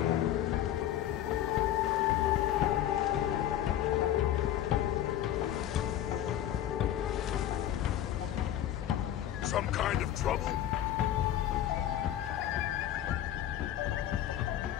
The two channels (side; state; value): right; quieter; 11.6 dB